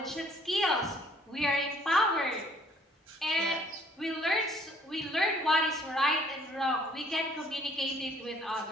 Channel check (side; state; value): both; normal; correlation 0.61